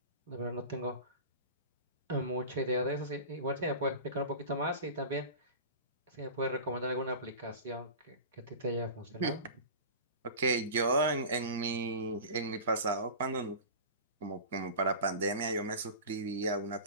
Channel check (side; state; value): both; inverted; correlation -0.33